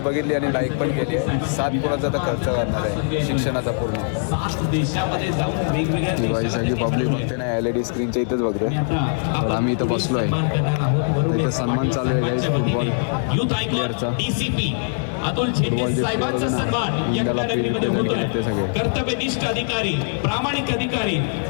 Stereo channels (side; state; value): right; silent; digital silence